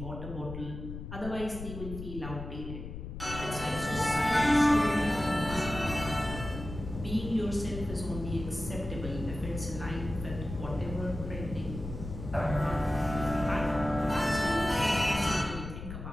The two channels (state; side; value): noise; left; rumble, 9 dB below the sound